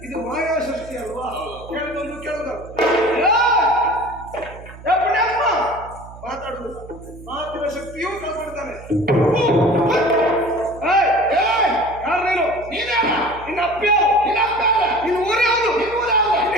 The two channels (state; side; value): noise; right; hum, 17 dB below the sound